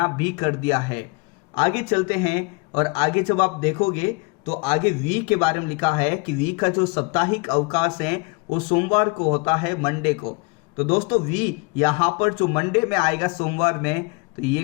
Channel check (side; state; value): right; quieter; 29.7 dB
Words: भी कर दिया है। आगे चलते हैं और आगे जब आप देखोगे तो आगे वी के बारे में लिखा है कि वी का जो साप्ताहिक अवकाश है वो सोमवार को होता है, मंडे को। तो दोस्तों, वी यहाँ पर जो मंडे में आएगा सोमवार में, तो ये